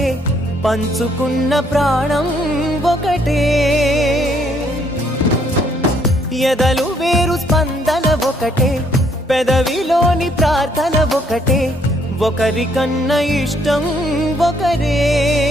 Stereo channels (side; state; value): both; normal; correlation 0.68